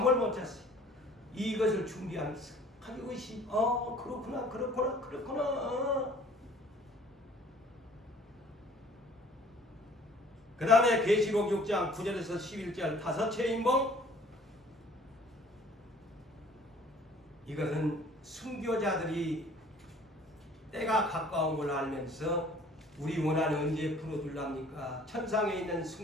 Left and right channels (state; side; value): normal; both; correlation 0.53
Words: 못 잤어요. 이것을 준비하면서 가지고 있이 그렇구나. 그 다음에 계시록 6장 9절에서 11절 다섯째 인봉. 이것은 순교자들이 때가 가까운 걸 알면서 우리 원한 언제 풀어줄랍니까? 천상에 있는